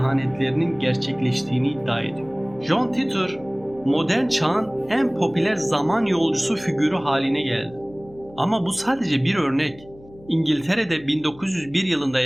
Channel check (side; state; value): left; noise; hum, 22 dB below the sound